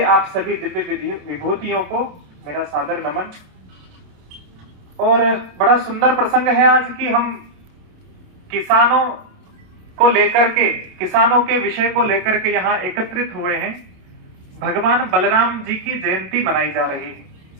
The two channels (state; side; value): late; left; 27 ms